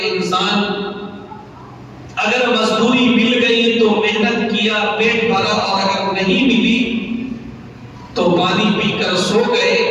انسان، اگر مزدوری مل گئی تو محنت کیا پیٹ بھرا، اور اگر نہیں ملی تو پانی پی کر سو گئے،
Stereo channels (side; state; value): both; identical; correlation 1.00